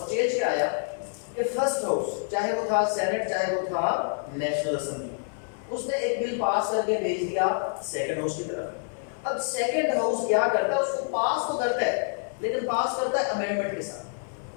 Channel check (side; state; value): right; silent; digital silence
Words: چینج کیا آیا کہ فرسٹ ہاؤس چاہے وہ تھا سینٹ چاہے وہ تھا نیشنل اسمبلی، اس نے ایک بل پاس کر کے بھیج دیا سیکنڈ ہاؤس کی طرف۔ اب سیکنڈ ہاؤس کیا کرتا ہے؟ اس کو پاس تو کرتا ہے لیکن پاس کرتا ہے امینڈمنٹ کے ساتھ۔